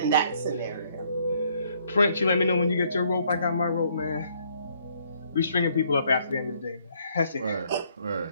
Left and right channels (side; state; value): both; inverted; correlation -0.67